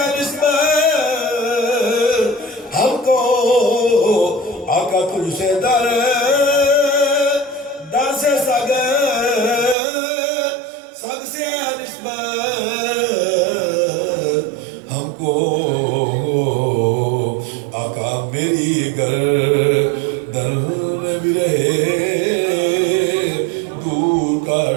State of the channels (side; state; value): left; drops out; at 9.8 s